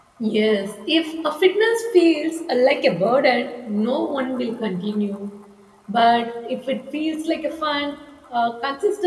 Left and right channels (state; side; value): identical; both; correlation 1.00